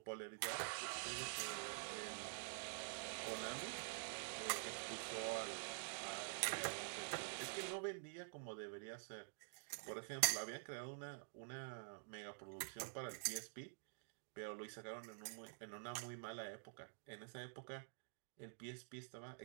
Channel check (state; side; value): silent; left; digital silence